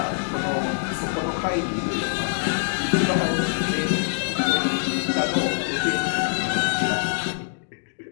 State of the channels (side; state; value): right; silent; digital silence